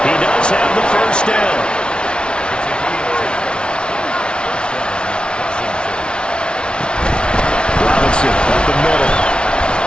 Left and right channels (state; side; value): late; right; 0.056 ms